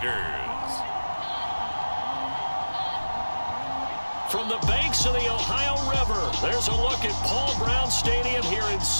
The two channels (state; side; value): inverted; both; correlation -1.00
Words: From the banks of the Ohio River, there's a look at Paul Brown Stadium here in